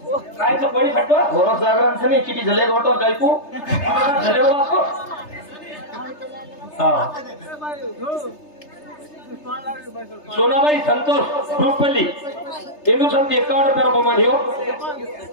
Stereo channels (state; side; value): late; right; 3.3 ms